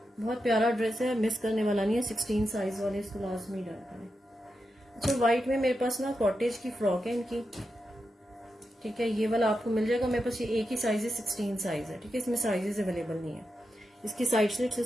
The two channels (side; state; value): both; normal; correlation 0.88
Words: बहुत प्यारा ड्रेस है, मिस करने वाला नहीं है। 16 साइज वाले इसको लाजमी डन करें। अच्छा, व्हाइट में मेरे पास ना कॉटेज की फ्रॉक है इनकी। ठीक है, ये वाला आपको मिल जाएगा। मेरे पास ये एक ही साइज है, 16 साइज है। ठीक है, इसमें साइजेस अवेलेबल नहीं है। इसकी साइड स्लिट्स